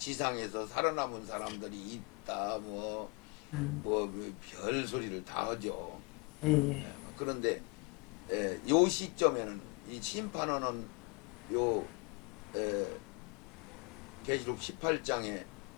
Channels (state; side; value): quieter; right; 29.7 dB